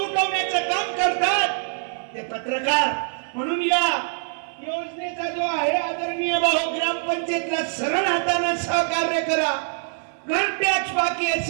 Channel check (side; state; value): left; silent; 56 dB below the other